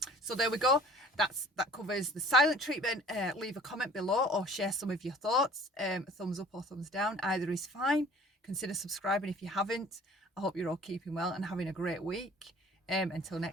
So there we go. That covers the silent treatment. Leave a comment below or share some of your thoughts. Thumbs up or thumbs down. Either is fine. Consider subscribing if you haven't. I hope you're all keeping well and having a great week. Until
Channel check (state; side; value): normal; both; correlation 0.49